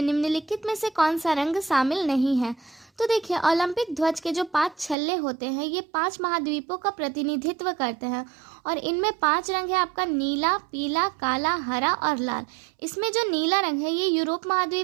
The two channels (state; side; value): drops out; left; at 5.0 s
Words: निम्नलिखित में से कौन सा रंग शामिल नहीं है। तो देखिए, ओलंपिक ध्वज के जो 5 छल्ले होते हैं ये 5 महाद्वीपों का प्रतिनिधित्व करते हैं और इनमें 5 रंग है आपका नीला, पीला, काला, हरा और लाल। इसमें जो नीला रंग है ये यूरोप